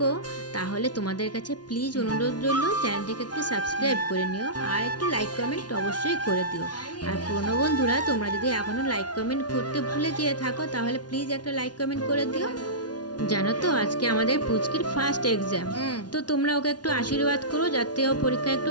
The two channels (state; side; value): late; right; 0.69 ms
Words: তাহলে তোমাদের কাছে প্লিজ অনুরোধ রইল, চ্যানেলটিকে একটু সাবস্ক্রাইব করে নিও আর একটু লাইক কমেন্ট অবশ্যই করে দিও। আর পুরনো বন্ধুরা তোমরা যদি এখনও লাইক কমেন্ট করতে ভুলে যেয়ে থাকো তাহলে প্লিজ একটা লাইক কমেন্ট করে দিও। জানো তো আজকে আমাদের পুচকির ফার্স্ট এক্সাম, তো তোমরা ওকে একটু আশীর্বাদ করো যাতে ও পরীক্ষায় একটু